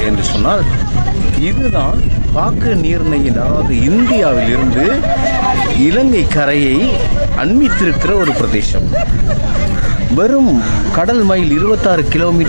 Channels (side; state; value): both; inverted; correlation -1.00